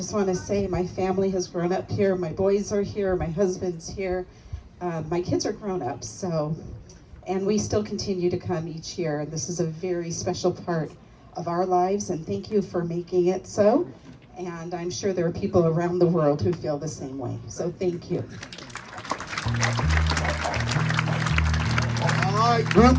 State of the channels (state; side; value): identical; both; correlation 1.00